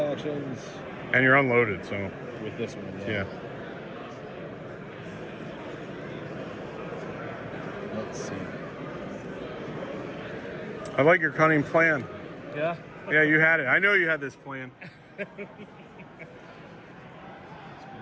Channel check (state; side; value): identical; both; correlation 1.00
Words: And you're unloaded, so with this one. yeah. Let's see. I like your cunning plan. Yeah. Yeah, you had it. I know you had this plan.